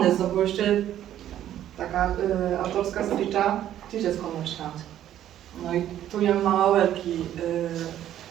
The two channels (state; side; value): quieter; left; 11.6 dB